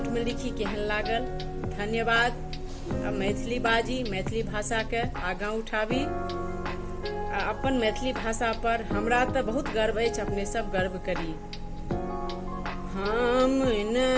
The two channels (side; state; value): both; identical; correlation 1.00